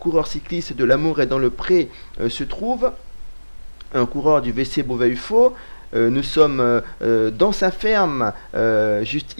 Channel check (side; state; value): both; inverted; correlation -1.00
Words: cycliste de l'Amour est dans le Pré se trouve, un coureur du VC Beauvais-UFO. Nous sommes dans sa ferme, juste